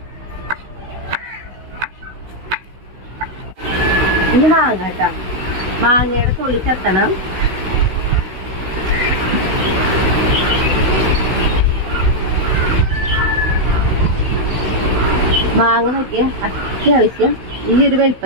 ഇനി മാങ്ങ കേട്ടാ, മാങ്ങയുടെ തൊലി ചെത്തണം. മാങ്ങ നോക്കിയ അത്യാവശ്യം ഈ ഒരു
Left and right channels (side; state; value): left; late; 16 ms